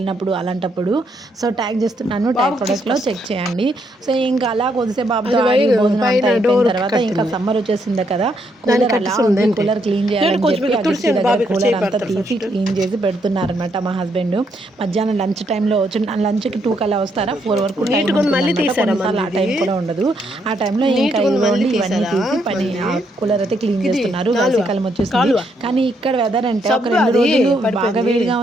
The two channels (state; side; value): normal; both; correlation 0.75